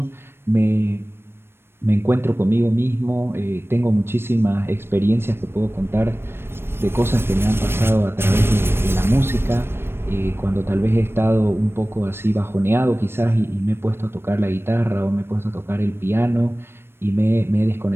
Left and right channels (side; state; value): left; late; 0.12 ms